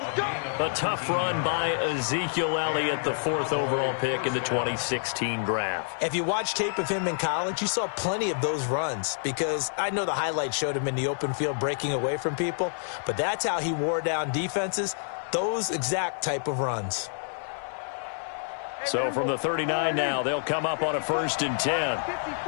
A tough run by Ezekiel Elliott, the 4th overall pick in the 2016 draft. If you watch tape of him in college, you saw plenty of those runs because I know the highlights showed him in the open field breaking away from people, but that's how he wore down defenses, those exact type of runs. So from the 39 now, they'll come up on a 1st and 10.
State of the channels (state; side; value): silent; right; 59 dB below the other